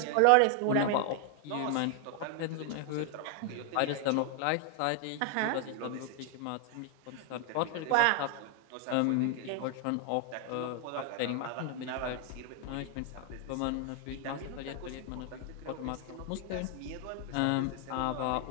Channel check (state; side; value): different; both; correlation 0.00